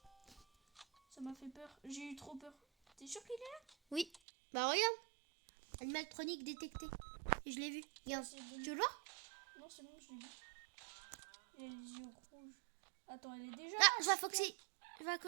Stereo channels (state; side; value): drops out; left; at 4.2 s